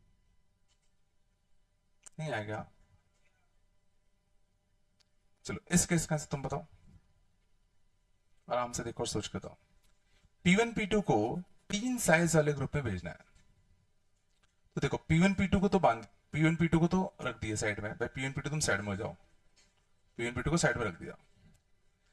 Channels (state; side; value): identical; both; correlation 1.00